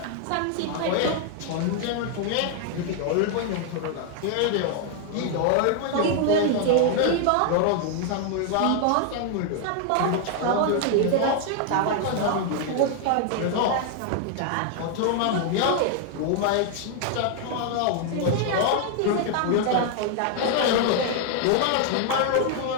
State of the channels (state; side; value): different; both; correlation 0.00